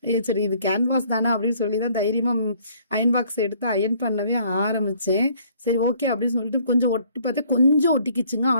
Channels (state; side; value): inverted; both; correlation -0.60